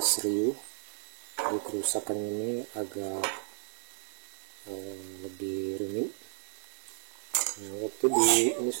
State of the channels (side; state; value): left; silent; 56 dB below the other